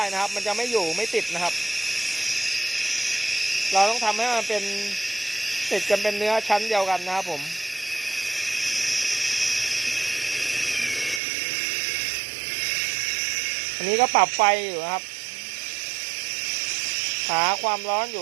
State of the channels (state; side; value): drops out; left; at 11.2 s